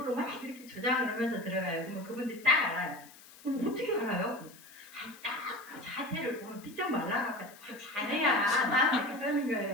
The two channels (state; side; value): noise; left; hiss, 21 dB below the sound